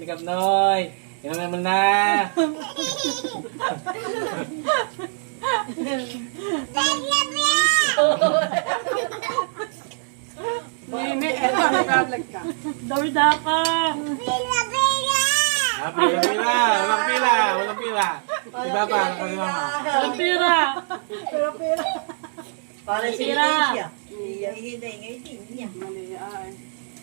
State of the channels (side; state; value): left; silent; digital silence